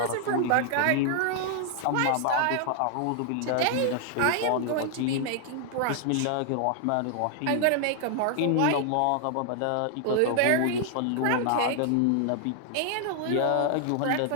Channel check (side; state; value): both; different; correlation 0.00